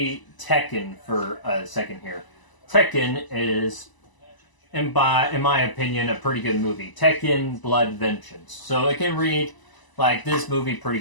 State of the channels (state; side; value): late; right; 1.0 ms